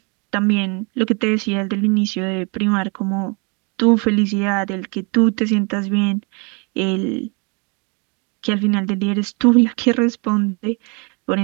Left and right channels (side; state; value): left; quieter; 32.9 dB